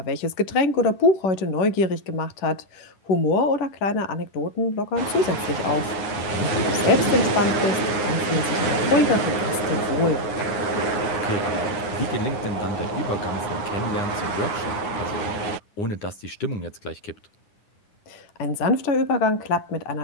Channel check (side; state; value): right; late; 9.7 ms